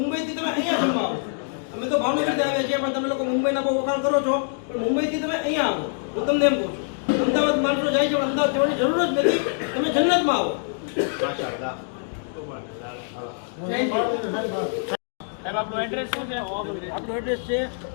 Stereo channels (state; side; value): silent; right; digital silence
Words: તમે અહીંયા જમવા આવો. અમે તો ભાવનગરથી આવ્યા છીએ પણ તમે લોકો મુંબઈના બહુ વખાણ કરો છો, પણ મુંબઈથી તમે અહીંયા આવો. હું તમને એમ કહું છું અમદાવાદ માણસો જાય છે પણ અમદાવાદ જવાની જરૂર જ નથી. તમે જન્નતમાં આવો. સાહેબ આપણું એડ્રેસ શું છે? આપણું એડ્રેસ છે